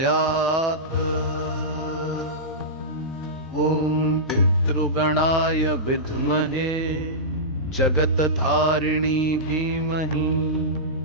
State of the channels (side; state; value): both; normal; correlation -0.16